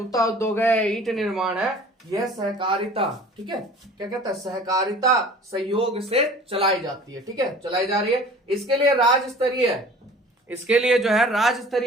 उद्योग है, ईंट निर्माण है, यह सहकारिता, ठीक है, क्या कहता है? सहकारिता सहयोग से चलाई जाती है, ठीक है, चलाई जा रही है। इसके लिए जो है राज्य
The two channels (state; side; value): normal; both; correlation 0.46